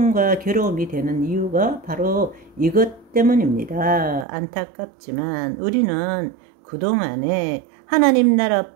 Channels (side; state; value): left; drops out; at 4.2 s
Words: 괴로움이 되는 이유가 바로 이것 때문입니다. 안타깝지만 우리는 그동안에 하나님 나라